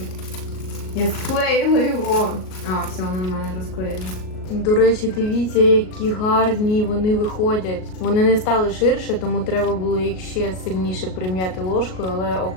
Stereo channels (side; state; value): right; late; 38 ms